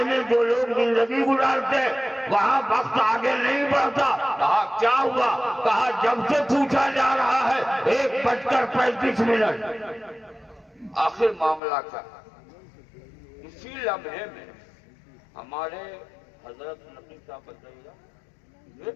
میں جو لوگ زندگی گزارتے وہاں وقت آگے نہیں بڑھتا۔ کہا کیا ہوا؟ کہا جب سے پوچھا جا رہا ہے 1:35۔ آخر معاملہ کیا؟ اسی لمحے میں ہمارے حضرت نقی صاحب بتائیے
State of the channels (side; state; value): right; drops out; at 11.6 s